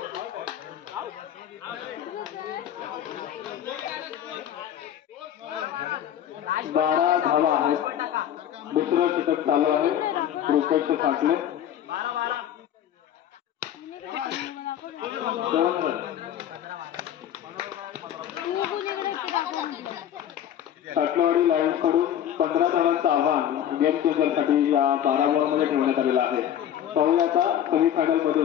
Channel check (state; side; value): quieter; right; 10.4 dB